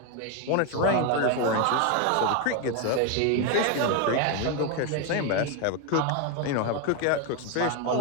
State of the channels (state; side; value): different; both; correlation 0.02